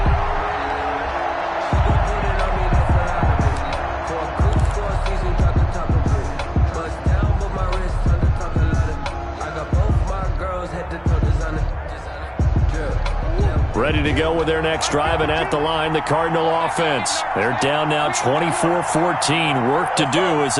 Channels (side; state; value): both; identical; correlation 1.00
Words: Ready to go with their next drive, and at the line, the Cardinal offense. They're down now 24-14. Work to do as